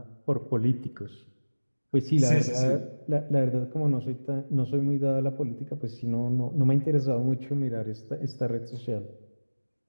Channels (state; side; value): inverted; both; correlation -1.00